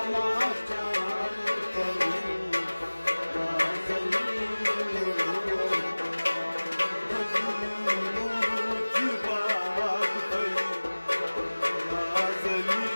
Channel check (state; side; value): inverted; both; correlation -1.00